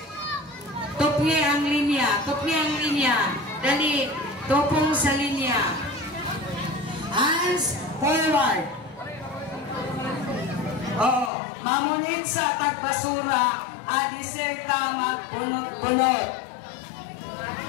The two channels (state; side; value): drops out; right; at 11.3 s